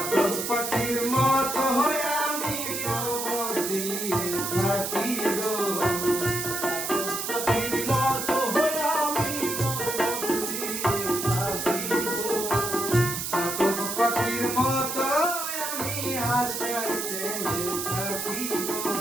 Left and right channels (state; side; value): noise; right; hiss, 3 dB below the sound